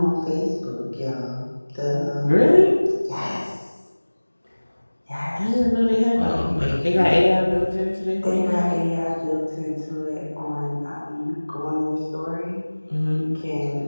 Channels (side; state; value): both; inverted; correlation -1.00